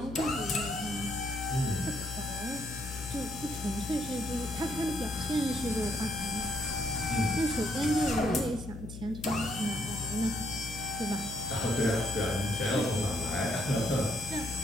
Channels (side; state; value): left; noise; hum, 11 dB below the sound